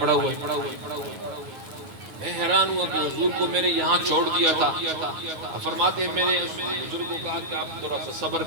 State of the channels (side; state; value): left; late; 9.7 ms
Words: ہوا ہے۔ میں حیران ہوا کہ حضور کو میں نے یہاں چھوڑ دیا تھا۔ فرماتے ہیں میں نے اس بزرگ کو کہا کہ آپ تھوڑا سا صبر